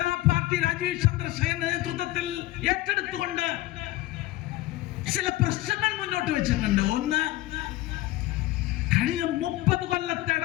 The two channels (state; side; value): quieter; right; 17.1 dB